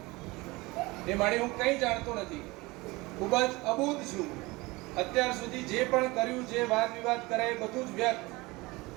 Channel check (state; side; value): quieter; left; 22.6 dB